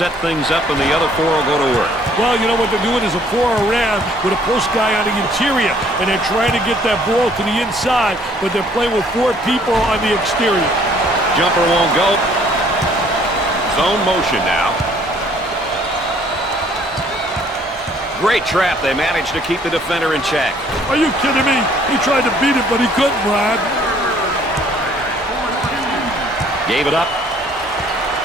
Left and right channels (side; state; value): both; normal; correlation 0.60